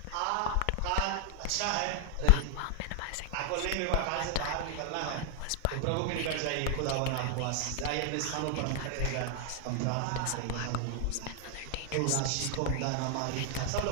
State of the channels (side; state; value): both; different; correlation 0.00